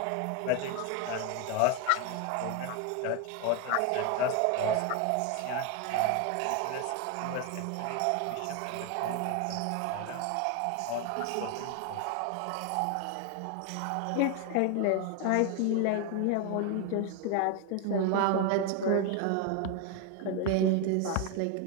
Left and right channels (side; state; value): both; different; correlation 0.01